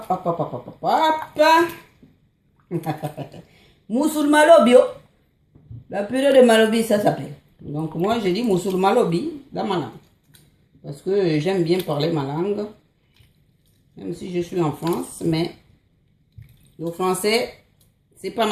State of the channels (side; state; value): both; identical; correlation 1.00